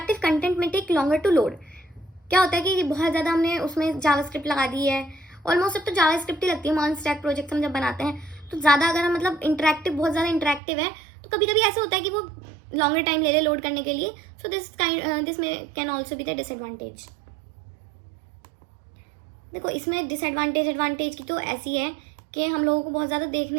कंटेंट में टेक लॉन्गर टू लोड. क्या होता है कि बहुत ज़्यादा हमने उसमें जावास्क्रिप्ट लगा दी है, ऑलमोस्ट अब तो जावास्क्रिप्ट ही लगती है. मॉन स्टैक प्रोजेक्ट हम जब बनाते हैं तो ज़्यादा अगर हम मतलब इंटरेक्टिव, बहुत ज़्यादा इंटरेक्टिव है तो कभी कभी ऐसा होता है कि वो लॉन्गर टाइम ले लोड करने के लिए. सो दिस में can also be the disadvantage. देखो इसमें डिसएडवांटेज एडवांटेज की तो ऐसी है कि हम लोगों को बहुत ज़्यादा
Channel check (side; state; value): left; drops out; at 10.6 s